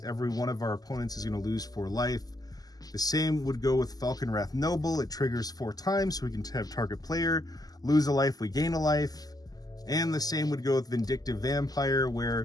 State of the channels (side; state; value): right; late; 0.18 ms